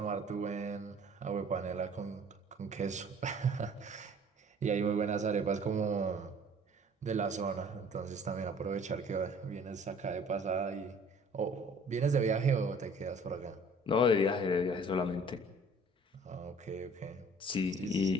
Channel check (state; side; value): normal; both; correlation 0.52